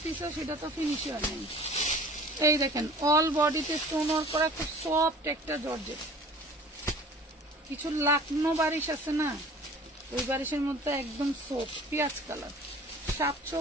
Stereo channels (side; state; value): both; normal; correlation 0.46